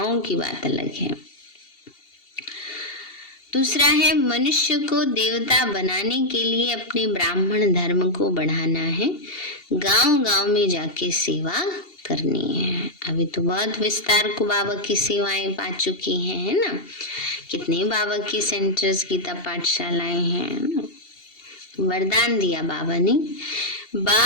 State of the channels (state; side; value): late; right; 2.7 ms